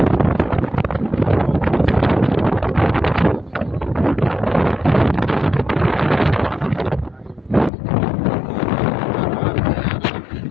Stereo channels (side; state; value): right; drops out; at 7.7 s